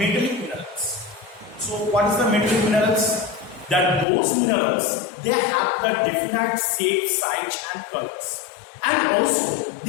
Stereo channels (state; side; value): drops out; right; at 4.0 s